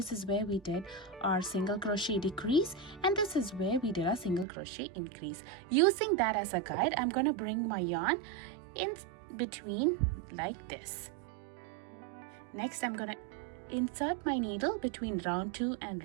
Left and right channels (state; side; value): drops out; left; at 4.5 s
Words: is where we did our single crochet decrease and this is where we did our single crochet increase. Using that as a guide, I'm gonna bring my yarn in between like this. Next, I'm gonna insert my needle between round 2 and